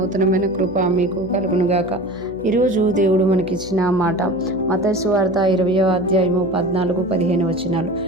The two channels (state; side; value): noise; left; hum, 17 dB below the sound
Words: కృప మీకు కలుగునుగాక. ఈరోజు దేవుడు మనకిచ్చిన మాట మత్తయి సువార్త 20వ అధ్యాయము 14-15 వచనాలు.